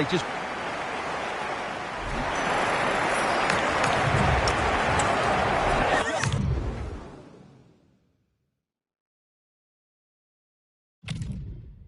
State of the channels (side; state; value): both; identical; correlation 1.00